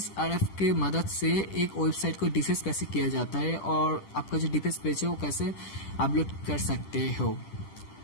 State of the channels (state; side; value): late; right; 10 ms